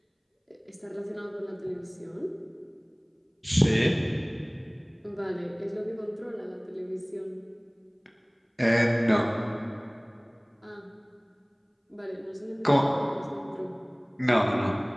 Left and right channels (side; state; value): both; identical; correlation 1.00